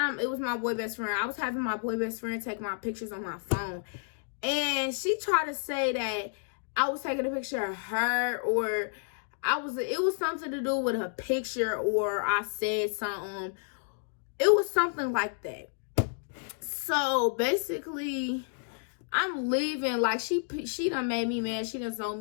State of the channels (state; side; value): silent; right; digital silence